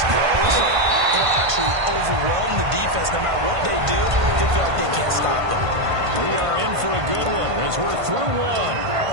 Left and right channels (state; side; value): late; left; 1.5 ms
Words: grows, it'll actually overwhelm the defense. No matter what they do, they feel like they can't stop them. We are in for a good one as we're through one